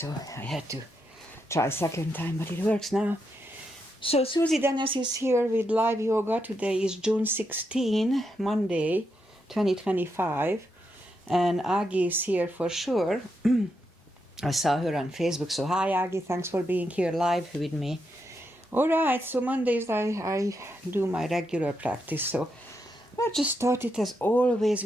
I had to try second time, but it works now. So Susie Dennis is here with live yoga. Today is June 16, Monday, 2025. And Agi is here for sure. I saw her on Facebook. So hi, Agi. Thanks for being here live with me. All right. So Mondays I do my regular practice. So I just started as always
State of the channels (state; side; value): normal; both; correlation 0.82